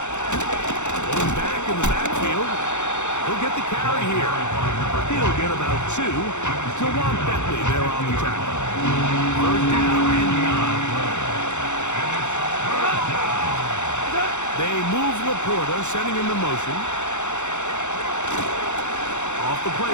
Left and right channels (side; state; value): right; late; 0.83 ms